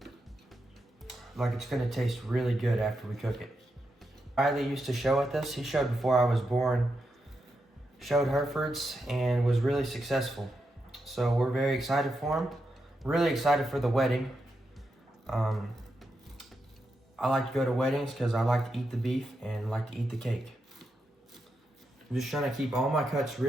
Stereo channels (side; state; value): both; normal; correlation 0.85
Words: like it's going to taste really good after we cook it. Riley used to show at this. He showed before I was born, showed Herefords, and was really successful. So we're very excited for him. Really excited for the wedding. I like to go to weddings because I like to eat the beef and like to eat the cake. I'm just trying to keep all my cuts